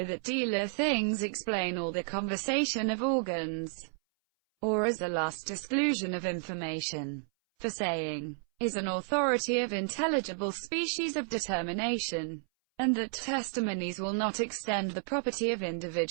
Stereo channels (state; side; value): silent; left; 57 dB below the other